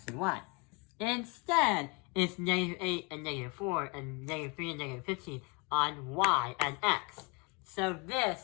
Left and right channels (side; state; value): right; quieter; 30.6 dB